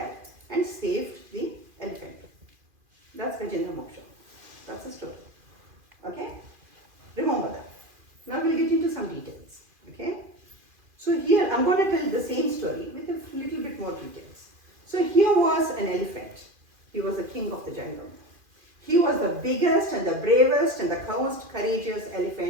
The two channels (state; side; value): late; left; 2.4 ms